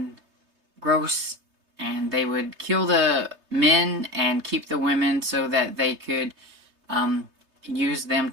gross, and they would kill the men and keep the women so that they could use them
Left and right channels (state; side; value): late; left; 3.3 ms